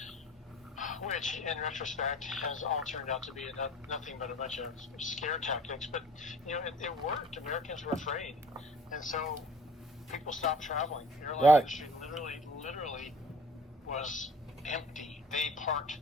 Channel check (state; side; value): normal; both; correlation 0.49